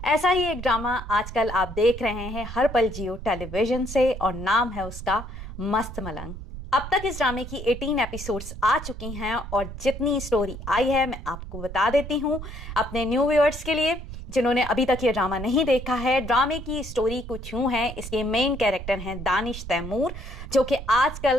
ऐसा ही एक ड्रामा आजकल आप देख रहे हैं हर पल जियो टेलीविजन से और नाम है उसका मस्त मलंग। अब तक इस ड्रामे की 18 एपिसोड्स आ चुकी हैं और जितनी स्टोरी आई है मैं आपको बता देती हूँ अपने न्यू व्यूअर्स के लिए जिन्होंने अभी तक ये ड्रामा नहीं देखा है। ड्रामे की स्टोरी कुछ यूँ है, इसके मेन कैरेक्टर हैं दानिश तैमूर, जो कि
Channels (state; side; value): noise; right; rumble, 10 dB below the sound